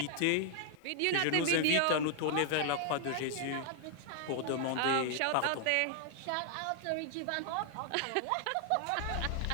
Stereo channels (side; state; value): both; different; correlation 0.00